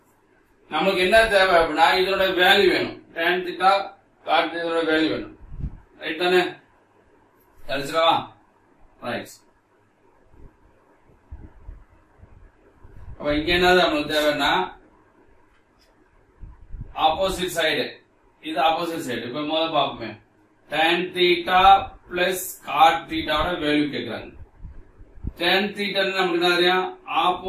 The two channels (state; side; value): identical; both; correlation 1.00